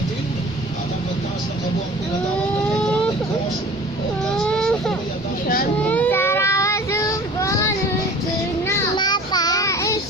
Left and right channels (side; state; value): both; normal; correlation 0.44